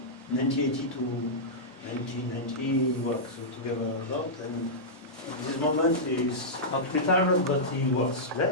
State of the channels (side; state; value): both; normal; correlation -0.12